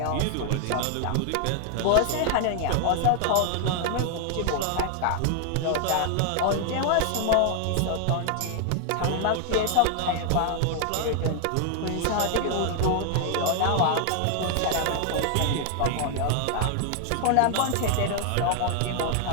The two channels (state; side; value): different; both; correlation 0.00